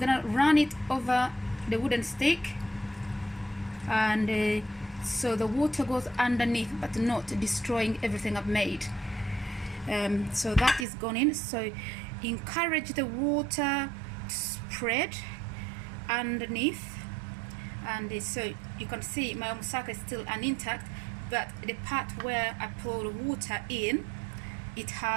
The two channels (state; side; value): drops out; left; at 10.9 s